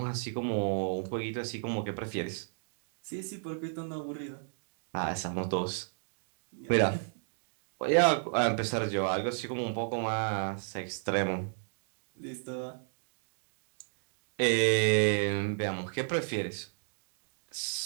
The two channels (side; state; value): left; silent; digital silence